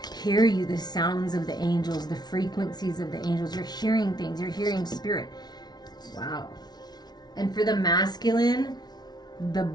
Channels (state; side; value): late; right; 0.19 ms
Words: hear you, the sounds of the angels, the frequencies of the angels. You're hearing things. You're hearing spirit. Wow. And for the masculine, the